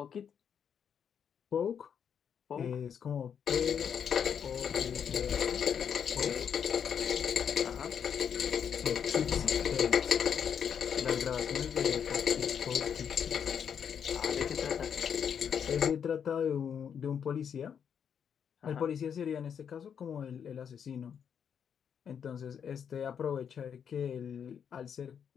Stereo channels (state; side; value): quieter; right; 7.7 dB